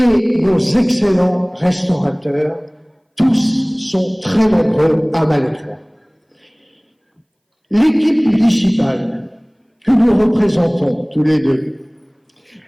nos excellents restaurateurs. Tous sont très nombreux à Malétroit. L'équipe municipale que nous représentons tous les deux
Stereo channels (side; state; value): both; identical; correlation 1.00